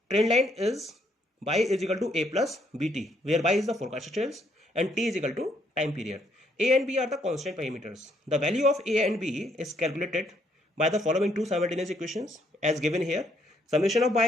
trend line is y is equal to a plus bt, where y is the forecasted sales and t is equal to time period. A and b are the constant parameters. The value of a and b is calculated by the following two simultaneous equations as given here. summation of y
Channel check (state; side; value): normal; both; correlation 0.70